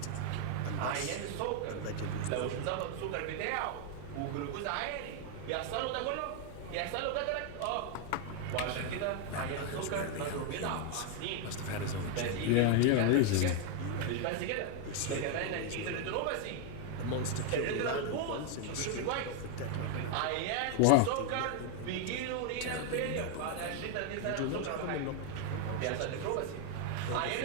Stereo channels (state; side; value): different; both; correlation 0.01